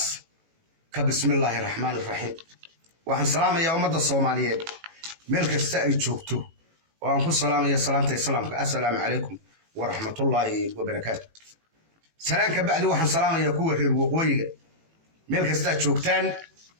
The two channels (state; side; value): late; left; 18 ms